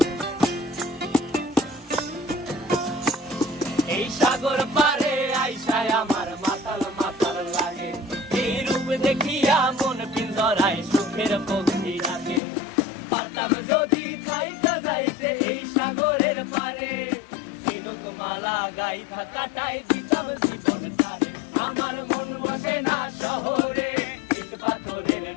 এই সাগর পারে আইসায় আমার মাতাল মাতাল লাগে, এই রূপ দেখিয়া মন পিঞ্জরায় সুখের পক্ষী ডাকে। পারতাম যদি থাইকা যাইতে এই সাগরের পারে, ঝিনুক মালা গাইথা কাটাই দিতাম জীবনটারে। আমার মন বসে না শহরে, ইট পাথরের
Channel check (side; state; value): right; drops out; at 12.4 s